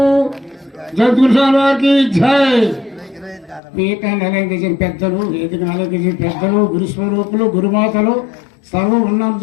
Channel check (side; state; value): right; drops out; at 3.6 s